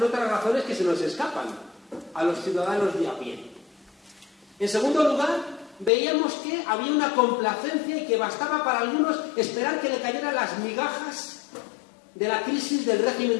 otras razones que se nos escapan a los ciudadanos de a pie. En segundo lugar, veíamos que había una complacencia y que bastaba para algunos esperar que le cayeran las migajas de la crisis del régimen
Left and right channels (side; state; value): right; drops out; at 5.9 s